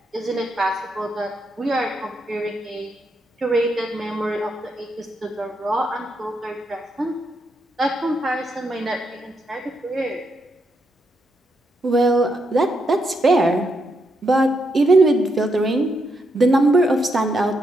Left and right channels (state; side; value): normal; both; correlation 0.80